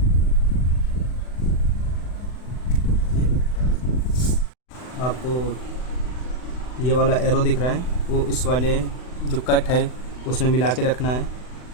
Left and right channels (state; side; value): late; right; 39 ms